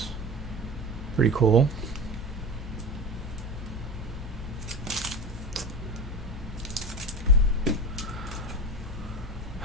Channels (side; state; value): both; normal; correlation 0.28